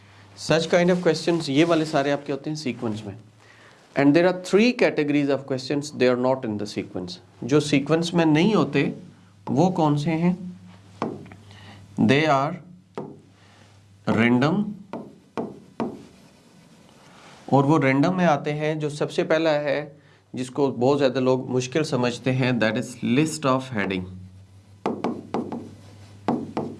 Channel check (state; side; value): identical; both; correlation 1.00